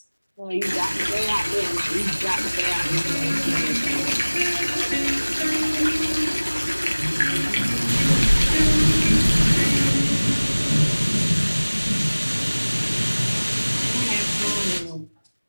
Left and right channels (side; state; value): both; inverted; correlation -1.00